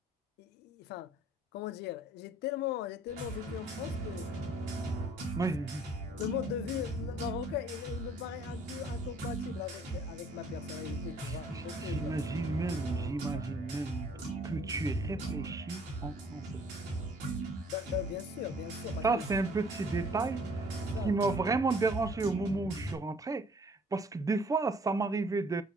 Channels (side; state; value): both; normal; correlation 0.58